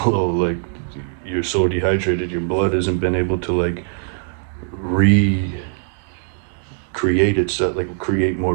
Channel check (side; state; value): left; silent; digital silence